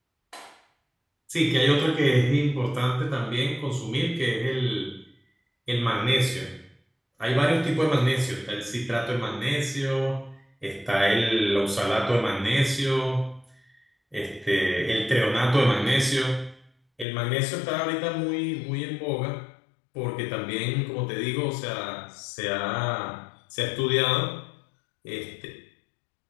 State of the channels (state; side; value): drops out; right; at 17.1 s